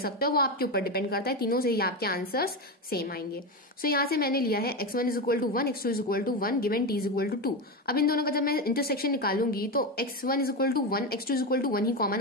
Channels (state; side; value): normal; both; correlation 0.16